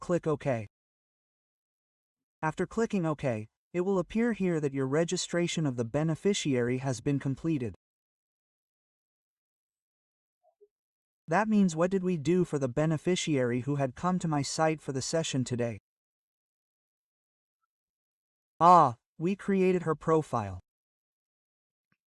OK. After clicking OK, it will appear here that your registration of the beneficiary has been completed. That means what did we do for the beneficiary who had come to my site for the session today? We created her profile.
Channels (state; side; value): identical; both; correlation 1.00